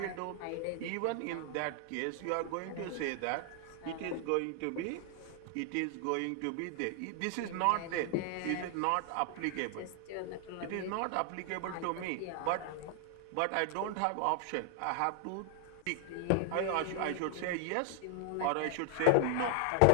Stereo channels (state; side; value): different; both; correlation 0.00